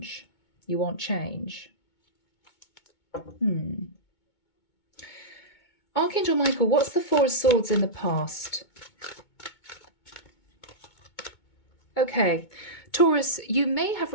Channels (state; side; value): late; right; 2.2 ms